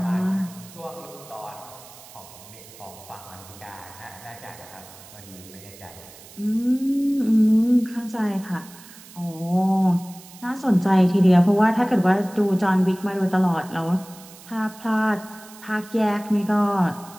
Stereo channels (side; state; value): right; noise; hiss, 20 dB below the sound